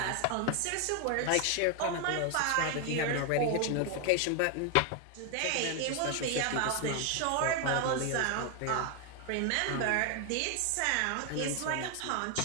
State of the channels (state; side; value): different; both; correlation 0.01